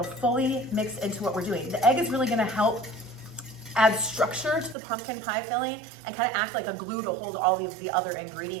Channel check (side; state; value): left; drops out; at 4.8 s